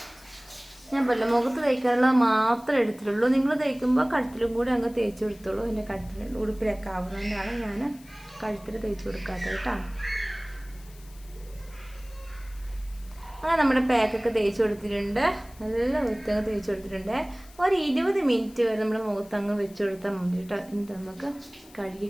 ഞാൻ പല മുഖത്ത് തേക്കാനുള്ളത് മാത്രമേ എടുത്തിട്ടുള്ളൂ. നിങ്ങൾ തേക്കുമ്പോൾ കഴുത്തിലും കൂടി അങ്ങ് തേച്ച് കൊടുത്തോളൂ. എൻ്റെ കഴുത്തിൽ ഉടുപ്പിലൊക്കെ ആവുന്നതുകൊണ്ടാണ് ഞാൻ കഴുത്തിൽ തേച്ച് കൊടുക്കാത്തത് കേട്ടോ. അങ്ങനെ നമ്മുടെ പാക്കൊക്കെ തേച്ച് കൊടുത്തിട്ടുണ്ട്. നല്ല വൃത്തിയൊക്കെ തേച്ച് കൊടുത്തിട്ടുണ്ട്. ഒരു 20 മിനിറ്റ് വരെ നമ്മൾ മുഖത്തങ്ങ് വെച്ച് കൊടുത്താൽ മതി കേട്ടോ. എന്നിട്ട് നമുക്ക്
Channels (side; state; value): left; noise; hiss, 24 dB below the sound